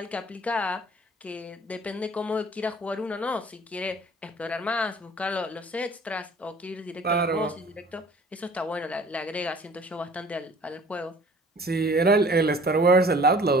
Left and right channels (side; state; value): both; normal; correlation 0.50